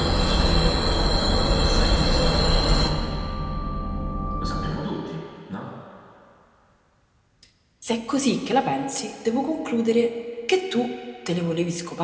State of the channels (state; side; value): identical; both; correlation 1.00